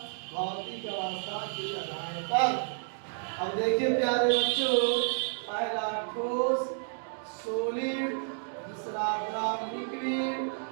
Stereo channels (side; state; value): left; silent; 57 dB below the other